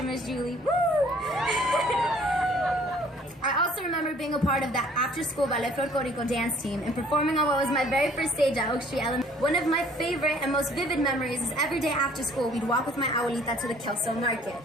Miss Julie. Woo! I also remember being a part of that after-school Ballet Folklorico dance team and performing on what was my very first stage at Oak Street Elementary. One of my favorite and most vivid memories is every day after school, we'd walk with my abuelita to the Kelso Market.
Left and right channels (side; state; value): both; normal; correlation 0.57